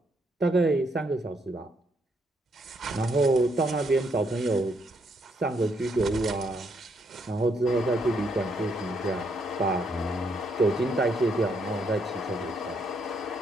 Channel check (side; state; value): both; normal; correlation 0.74